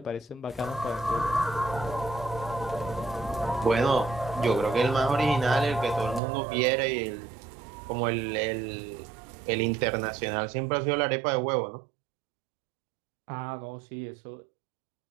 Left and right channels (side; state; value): left; drops out; at 6.2 s